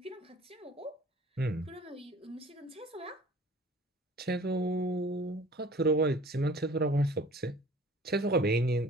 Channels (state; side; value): normal; both; correlation 0.48